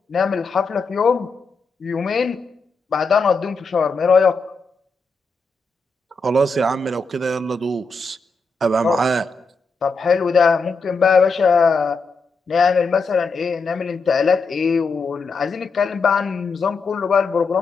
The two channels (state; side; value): quieter; right; 4.0 dB